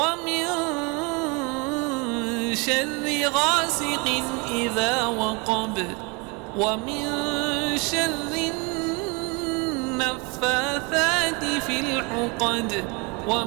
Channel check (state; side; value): quieter; left; 30.1 dB